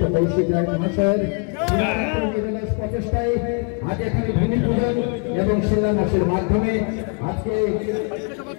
কৌশিক রায় মহাশয়ের প্রচেষ্টায় আজ এখানে ভূমি পূজন এবং শিলান্যাসের মাধ্যমে আজকে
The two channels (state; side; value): quieter; right; 36.5 dB